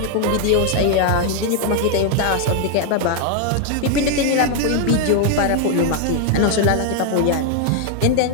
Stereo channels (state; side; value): different; both; correlation 0.00